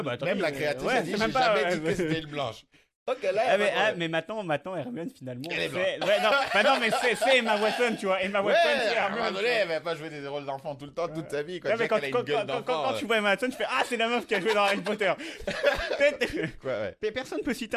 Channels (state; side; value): identical; both; correlation 1.00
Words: bah, attendez, même la créatrice ouais, a dit, c'est j'ai même pas- jamais dit que c'était une blanche. Ok, là, mais maintenant, Hermione, finalement, Elle est c'est... Ouais, non, bah non, mais c'est Emma Watson, tu vois. Emma ouais, Watson, c'est à un moment Hermione. donné, elle va pas jouer des rôles d'enfant tout le temps, toute sa vie. Quoi. Ouais, mais Déjà qu'elle a une gueule d'enfant. quand tu vois Emma Watson, tu fais ah, c'est la meuf qui a joué dans Harry Potter. Quoi, ouais. Mais personne peut citer